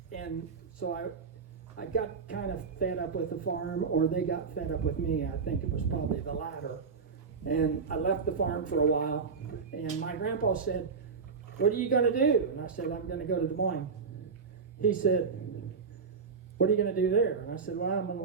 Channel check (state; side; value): quieter; left; 5.4 dB